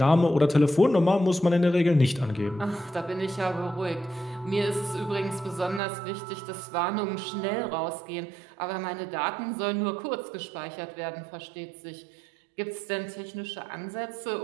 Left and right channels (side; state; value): left; drops out; at 5.8 s